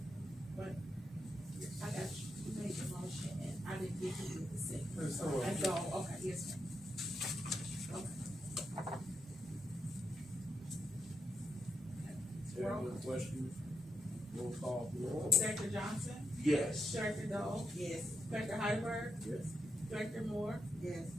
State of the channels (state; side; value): normal; both; correlation 0.83